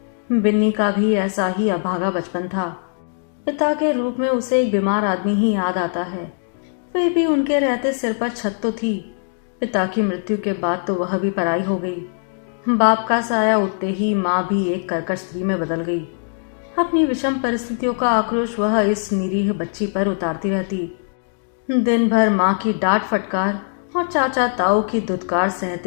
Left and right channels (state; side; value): silent; right; digital silence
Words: बिन्नी का भी ऐसा ही अभागा बचपन था। पिता के रूप में उसे एक बीमार आदमी ही याद आता है। वे भी उनके रहते सिर पर छत तो थी, पिता की मृत्यु के बाद तो वह भी पराई हो गई। बाप का साया उठते ही माँ भी एक कर्कश स्त्री में बदल गई। अपनी विषम परिस्थितियों का आक्रोश वह इस निरीह बच्ची पर उतारती रहती। दिन भर माँ की डांट फटकार और चाचा ताऊ की धुतकार